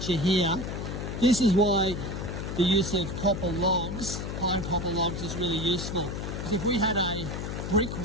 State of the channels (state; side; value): noise; left; hum, 5 dB below the sound